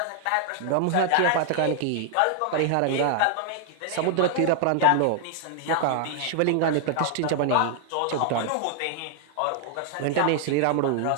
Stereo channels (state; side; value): different; both; correlation 0.00